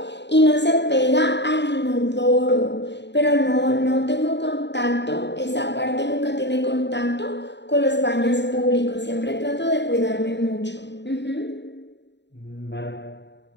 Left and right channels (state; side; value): late; right; 0.51 ms